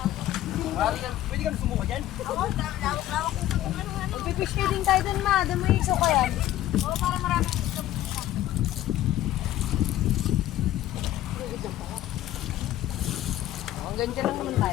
Pwede ka na sumuka dyan? Magpipish feeding tayo dun ma. Doon mo iso ka yan. Oo, para marami. Ang ganda lang naman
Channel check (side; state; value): right; quieter; 13.7 dB